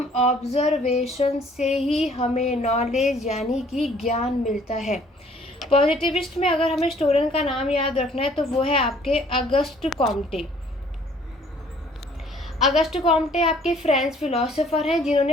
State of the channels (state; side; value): normal; both; correlation 0.58